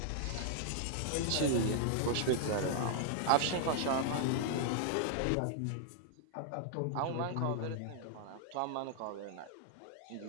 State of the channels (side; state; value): both; different; correlation 0.00